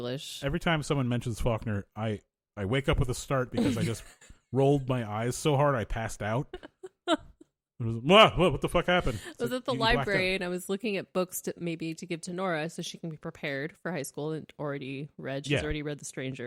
Every time someone mentions Faulkner, I wake up with a start because I just rolled my eyes so hard I passed out. It was, what the fuck happened? I was at the library and I was looking at books to give to Nora so she can be prepared for high school and already read. She's already read The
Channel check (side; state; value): both; identical; correlation 1.00